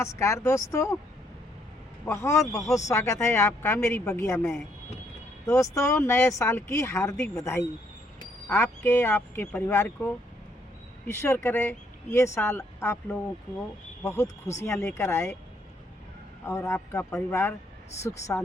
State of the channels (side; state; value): both; normal; correlation 0.70